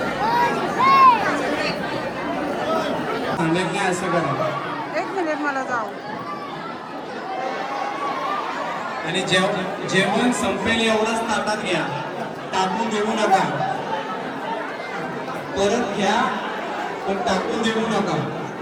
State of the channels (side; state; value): both; identical; correlation 1.00